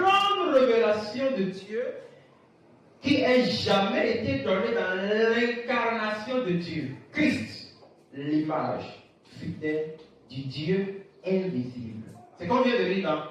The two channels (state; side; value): identical; both; correlation 1.00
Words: révélation de Dieu qui ait jamais été donnée dans l'incarnation de Dieu. Christ, l'image fidèle du Dieu invisible. C'est qu'on vient de lire